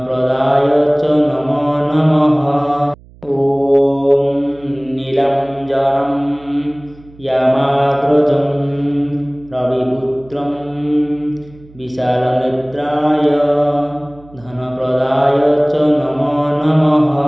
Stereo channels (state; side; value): noise; right; hum, 24 dB below the sound